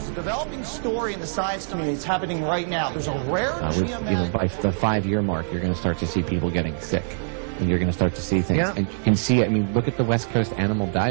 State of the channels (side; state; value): left; silent; digital silence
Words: a developing story in the science community. It's happening right now. There's a rare by the 5-year mark, you're going to start to see people getting sick. And you're going to start to see things. Yeah. And you can see it. I mean, look at the West Coast animal